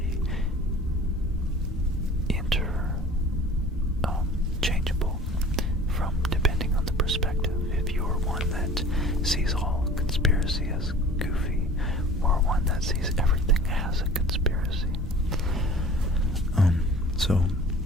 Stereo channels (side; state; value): both; normal; correlation 0.45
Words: changeable from depending on the perspective. If you're one that sees all conspiracy as goofy, or one that sees everything as a conspiracy. So